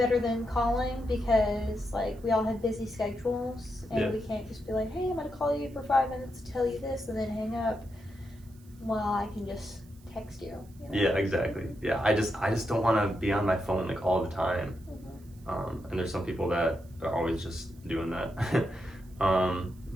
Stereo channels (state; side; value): noise; right; hiss, 28 dB below the sound